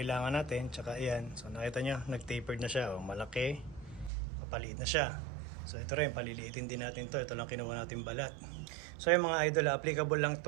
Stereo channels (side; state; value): left; drops out; at 4.1 s